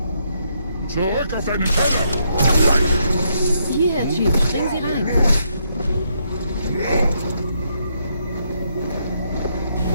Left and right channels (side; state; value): both; inverted; correlation -0.76